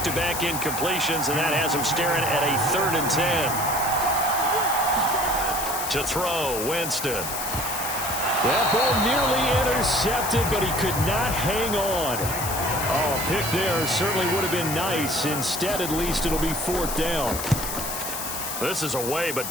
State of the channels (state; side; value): noise; left; hiss, 5 dB below the sound